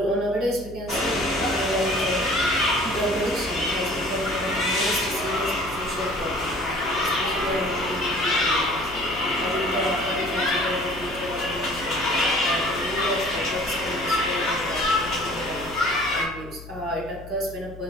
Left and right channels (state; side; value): noise; left; hum, 15 dB below the sound